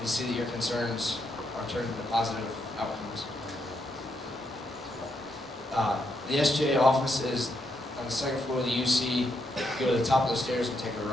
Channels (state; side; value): normal; both; correlation 0.79